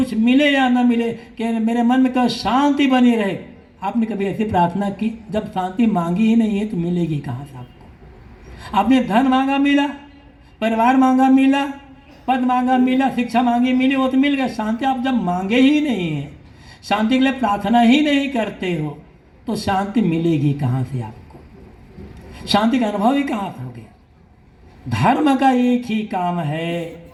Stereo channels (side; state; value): both; identical; correlation 1.00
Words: मिले या ना मिले कि मेरे मन में कभी शांति बनी रहे। आपने कभी ऐसी प्रार्थना की? जब शांति मांगी ही नहीं है तो मिलेगी कहाँ से आपको? आपने धन मांगा मिला, परिवार मांगा मिला, पद मांगा मिला, शिक्षा मांगी मिली, वो तो मिल गया। शांति आप जब मांगे ही नहीं है, शांति के लिए प्रार्थना ही नहीं करते हो, तो शांति मिलेगी कहाँ से आपको? शांति का अनुभव ही कहाँ से हो गया? धर्म का एक ही काम है,